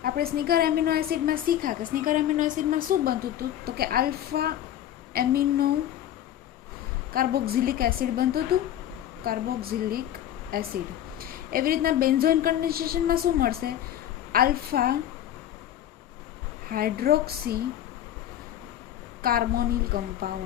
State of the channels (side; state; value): right; quieter; 11.5 dB